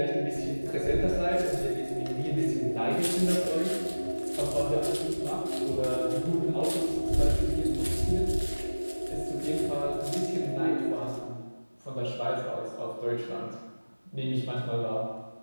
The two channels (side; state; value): both; inverted; correlation -1.00